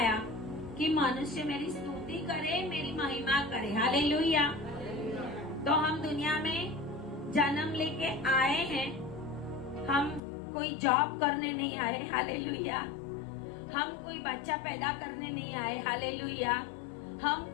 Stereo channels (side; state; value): right; drops out; at 10.2 s